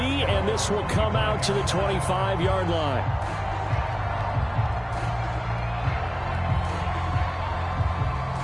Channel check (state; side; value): identical; both; correlation 1.00